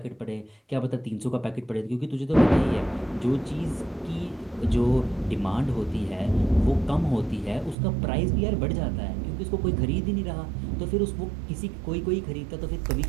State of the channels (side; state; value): left; drops out; at 7.8 s